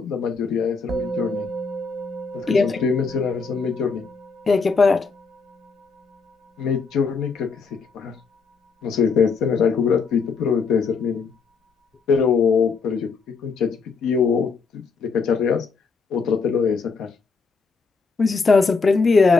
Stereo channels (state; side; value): quieter; right; 4.8 dB